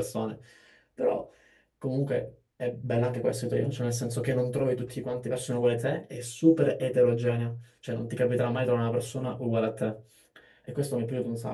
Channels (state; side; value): identical; both; correlation 1.00